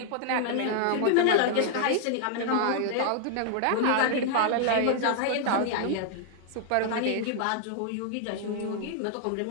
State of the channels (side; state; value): both; different; correlation 0.00